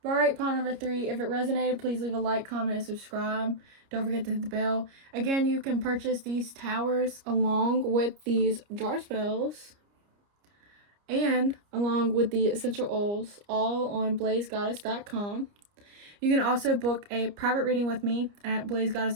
Alright, pile number 3. If it resonated, please leave a like, comment, and subscribe. Don't forget to hit the bell. Again, you can purchase these towers along with these jar spells and along with the essential oils, all on blazegoddess.com. You can also book a private reading with me at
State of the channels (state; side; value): late; left; 29 ms